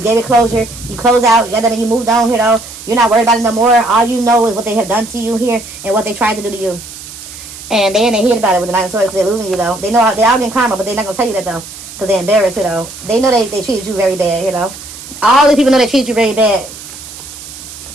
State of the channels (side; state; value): right; noise; hiss, 14 dB below the sound